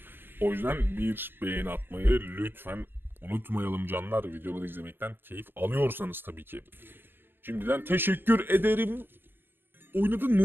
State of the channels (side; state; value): left; late; 0.10 ms